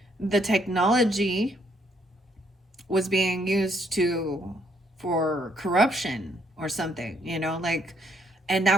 the technology was being used for corruption or something, you know, like, and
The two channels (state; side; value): normal; both; correlation 0.69